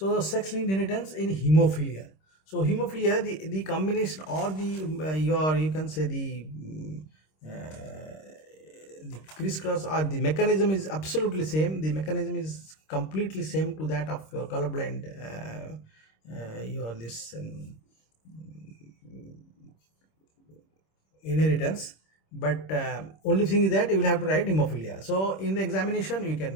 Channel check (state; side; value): late; right; 26 ms